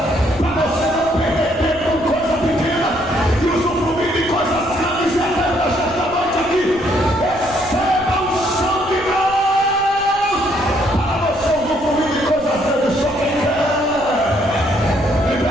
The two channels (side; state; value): right; noise; rumble, 18 dB below the sound